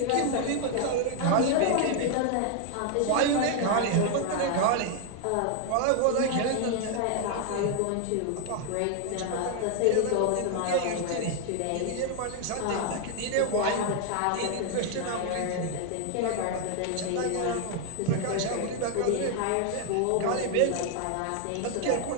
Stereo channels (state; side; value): different; both; correlation 0.00